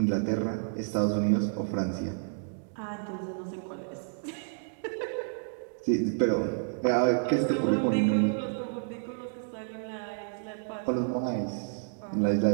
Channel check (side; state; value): left; silent; digital silence